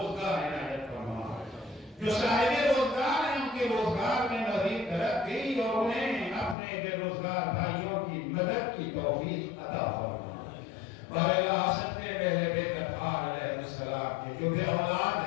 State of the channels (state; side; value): drops out; right; at 6.6 s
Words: عنایت فرما، جو صاحب روزگار ہیں ان کے روزگار میں مزید ترقی اور انہیں اپنے بے روزگار بھائیوں کی مدد کی توفیق عطا فرما۔ بارے حسد کے پہلے بیت اطہار علیہ السلام کے جو بے اولاد